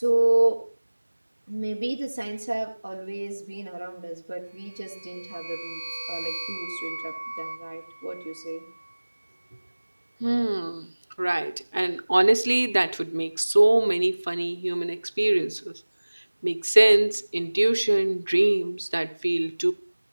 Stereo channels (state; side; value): inverted; both; correlation -1.00